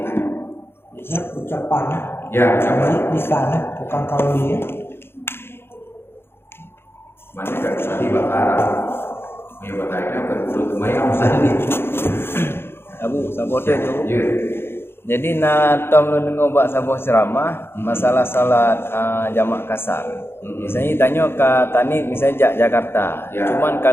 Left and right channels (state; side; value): late; right; 0.11 ms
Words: Ya, ucapan. Ya, ucapan. Di sana, bukan kalau dia. Mana kan usalli bakara. Ya batainya berbulut lumayan usalli. Abu, sabote tu. Ya. Jadi na tom lu dengar bak sabuh ceramah masalah salat jamak kasar. Misalnya tanya ke Tanit misalnya Jakarta. Ya. Cuman